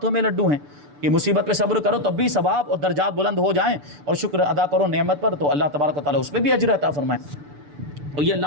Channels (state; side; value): late; left; 6.9 ms